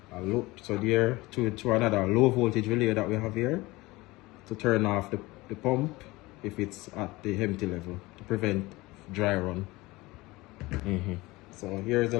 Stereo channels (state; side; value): quieter; right; 21.1 dB